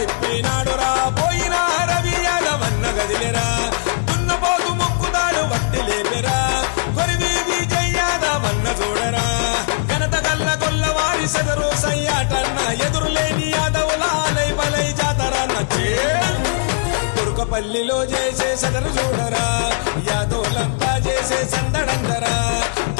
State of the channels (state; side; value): silent; right; digital silence